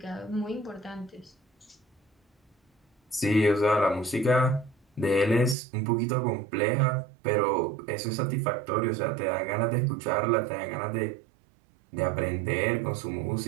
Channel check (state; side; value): drops out; left; at 5.6 s